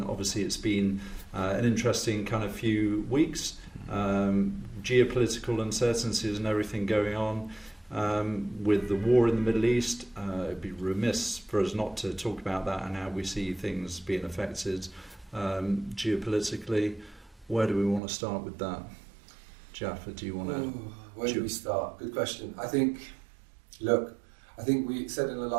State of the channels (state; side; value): drops out; left; at 18.0 s